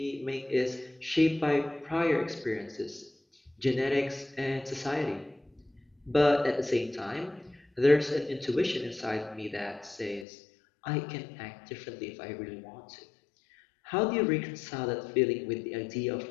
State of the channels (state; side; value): drops out; right; at 10.2 s